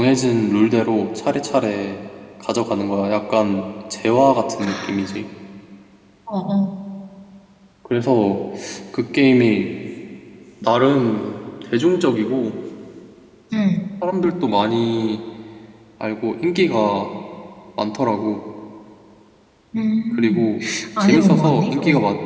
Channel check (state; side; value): identical; both; correlation 1.00